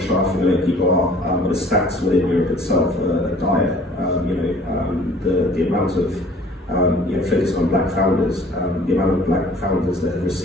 sure how familiar people are, but the stats within Europe itself are dire. The amount of focus on black founders, the amount of black founders that have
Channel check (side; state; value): both; normal; correlation 0.52